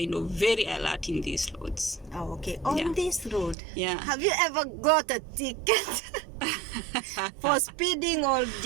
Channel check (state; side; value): drops out; left; at 3.6 s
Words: of very alert in these roads. Oh, okay. On this road, Yeah. have you ever got a ticket for speeding or